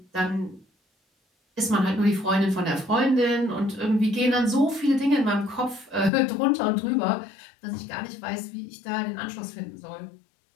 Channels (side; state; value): right; drops out; at 6.1 s